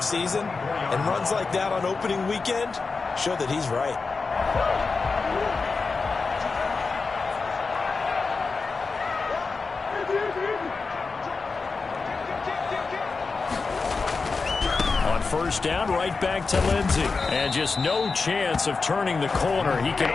And runs like that on opening weekend show that he's right. On first down, right back to Lindsay. And just no chance of turning the corner. He can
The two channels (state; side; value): quieter; right; 4.4 dB